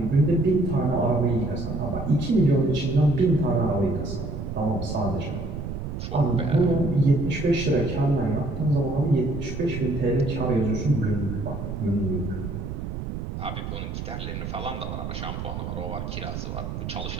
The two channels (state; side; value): noise; right; rumble, 6 dB below the sound